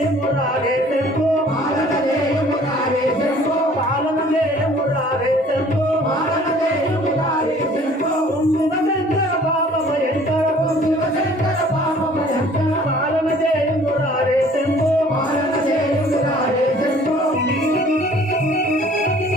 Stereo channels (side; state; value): both; normal; correlation 0.53